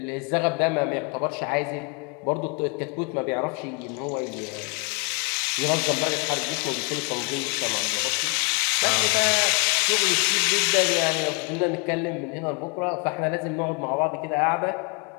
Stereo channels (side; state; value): right; quieter; 31.5 dB